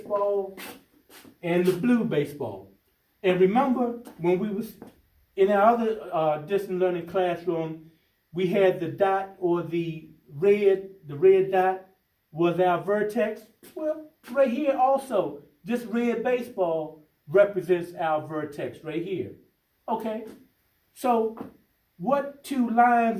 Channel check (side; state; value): both; identical; correlation 1.00